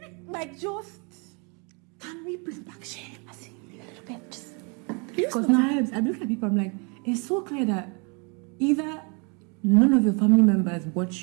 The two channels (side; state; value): left; quieter; 33.9 dB